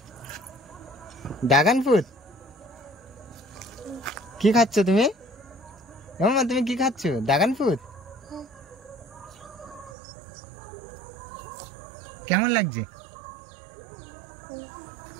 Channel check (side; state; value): left; drops out; at 9.9 s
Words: Dragon fruit? কি খাচ্ছ তুমি? মামা তুমি কি খাচ্ছ? Dragon fruit? কেমন লাগছে?